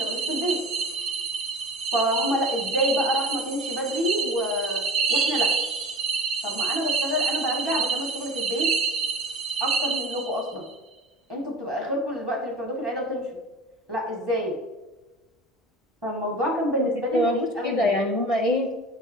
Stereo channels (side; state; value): both; normal; correlation 0.34